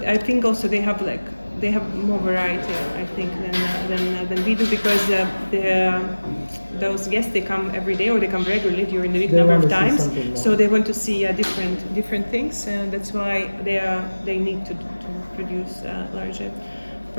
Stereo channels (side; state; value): both; inverted; correlation -1.00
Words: I think also they have more variety, I think, than we do, because those guests, they come every day or they come regularly during the week number of times. So they want to see different things, and that's why they need to produce larger